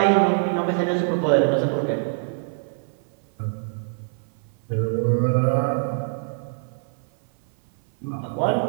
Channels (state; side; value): silent; left; 57 dB below the other